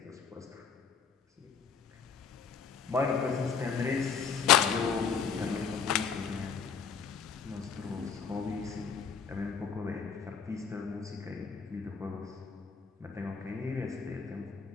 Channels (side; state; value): right; quieter; 6.4 dB